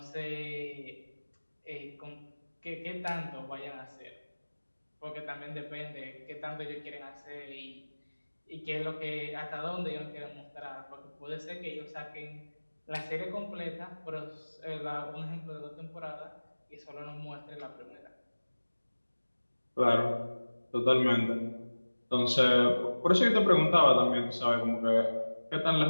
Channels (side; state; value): both; inverted; correlation -1.00